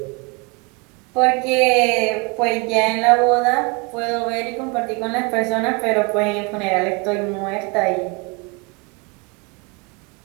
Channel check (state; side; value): quieter; left; 30.5 dB